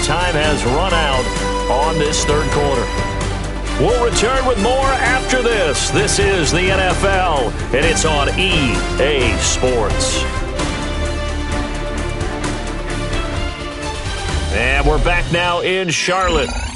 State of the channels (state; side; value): identical; both; correlation 1.00